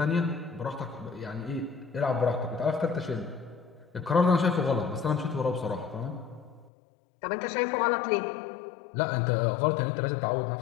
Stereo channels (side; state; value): right; drops out; at 6.7 s